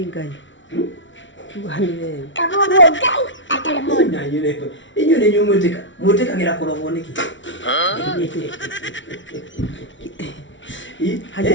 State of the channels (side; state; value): right; late; 0.55 ms